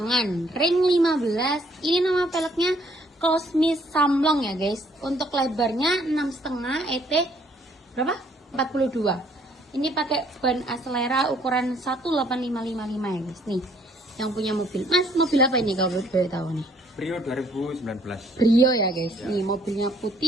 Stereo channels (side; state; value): both; normal; correlation 0.64